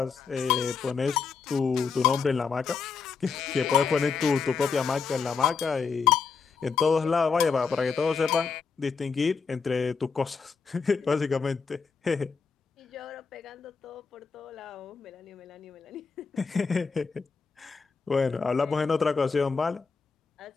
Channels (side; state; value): right; quieter; 5.4 dB